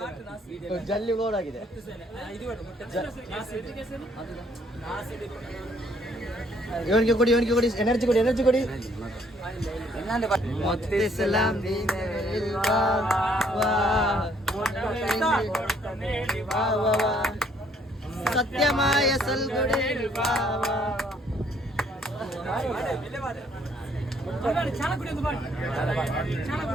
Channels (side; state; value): both; normal; correlation 0.65